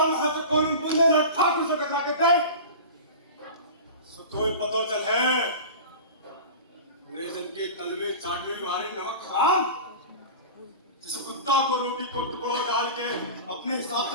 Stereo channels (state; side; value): inverted; both; correlation -0.33